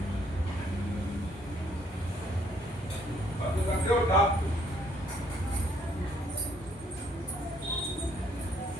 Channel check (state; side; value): normal; both; correlation 0.66